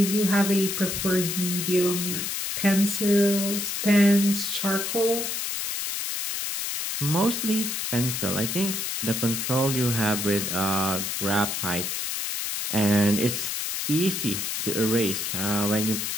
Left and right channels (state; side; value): noise; left; hiss, 2 dB below the sound